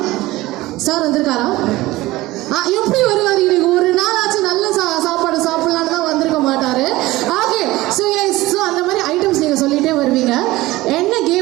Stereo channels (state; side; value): quieter; left; 18.5 dB